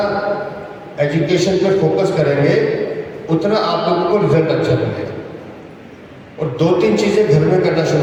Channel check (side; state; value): both; identical; correlation 1.00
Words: एजुकेशन पर फोकस करेंगे, उतना आप लोगों को रिजल्ट अच्छा मिलेगा। और 2-3 चीज़ें घर में करना